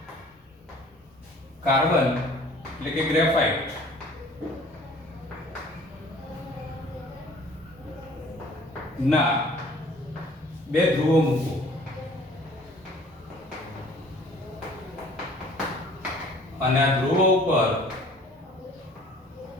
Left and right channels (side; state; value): both; normal; correlation 0.52